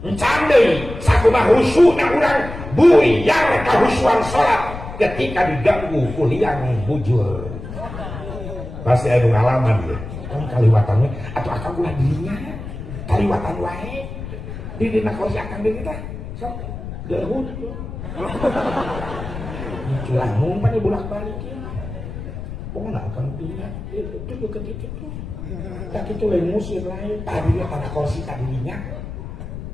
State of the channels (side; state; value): left; noise; rumble, 9 dB below the sound